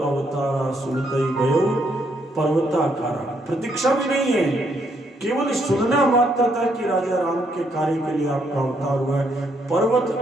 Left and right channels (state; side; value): normal; both; correlation 0.73